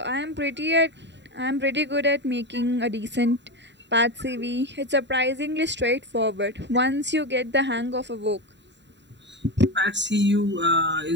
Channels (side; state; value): left; late; 0.52 ms